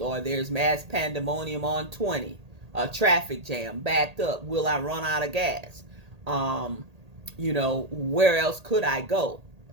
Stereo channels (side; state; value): left; late; 1.8 ms